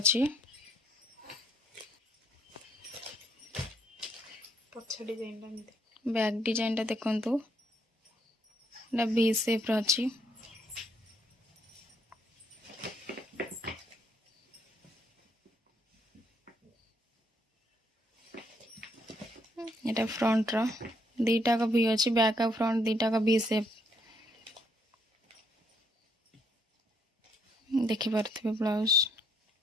बैक डिजाइन देखु वी शेप अच्छी यहाँ फ्रंट रो दीटा का भी अच्छी बैक और फ्रंट दीटा का वी शेप देखिपे ब्लाउज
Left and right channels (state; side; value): normal; both; correlation 0.70